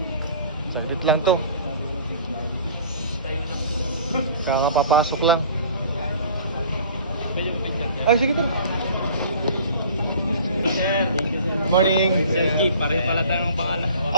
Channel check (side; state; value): both; inverted; correlation -0.47